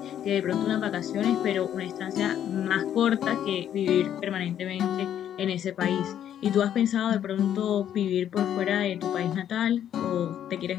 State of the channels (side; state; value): right; quieter; 10.2 dB